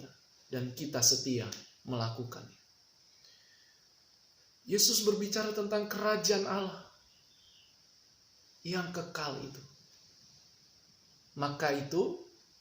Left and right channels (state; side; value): identical; both; correlation 1.00